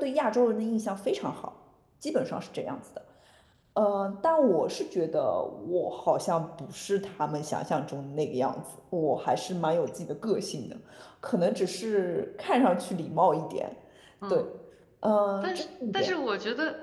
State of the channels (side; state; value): both; identical; correlation 1.00